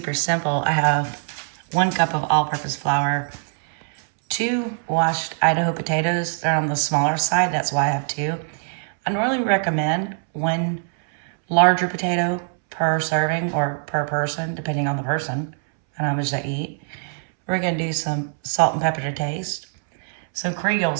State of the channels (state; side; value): silent; left; 64 dB below the other